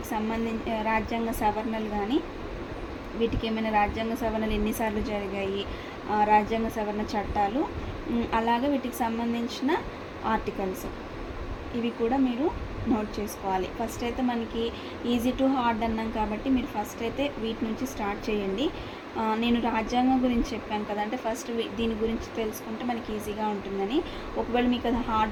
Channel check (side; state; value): both; identical; correlation 1.00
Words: రాజ్యాంగ సవరణలు కానీ, వీటికి ఏమైనా రాజ్యాంగ సవరణలు ఎన్నిసార్లు జరిగాయి, రాజ్యాంగ సవరణ చట్టాలు, అలాగే వీటికి సంబంధించిన ఆర్టికల్స్, ఇవి కూడా మీరు నోట్ చేసుకోవాలి. ఫస్ట్ అయితే మనకి ఈజీ టు హార్డ్ అన్నాం కాబట్టి మీరు ఫస్ట్ అయితే వీటి నుంచి స్టార్ట్ చేయండి. నేను రాజ్యాంగం గురించి చెప్పాను కదా, అంటే ఫస్ట్ దీని గురించి తెలుసుకుంటే మనకి ఈజీగా ఉంటుందని. ఒకవేళ మీకు అది